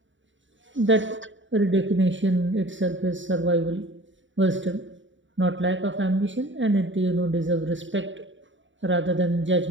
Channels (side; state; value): left; late; 0.55 ms